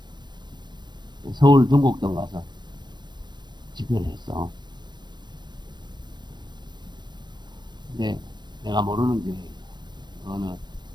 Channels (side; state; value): left; late; 0.21 ms